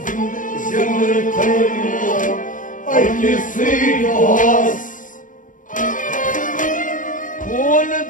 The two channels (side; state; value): right; late; 0.38 ms